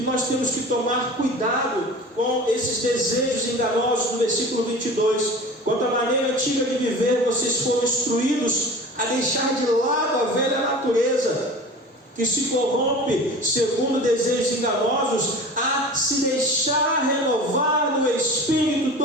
nós temos que tomar cuidado com esses desejos enganosos. No versículo 22, quanto à maneira antiga de viver, vocês foram instruídos a deixar de lado a velha natureza, que se corrompe segundo desejos enganosos, a se deixar renovar no espírito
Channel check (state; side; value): normal; both; correlation 0.37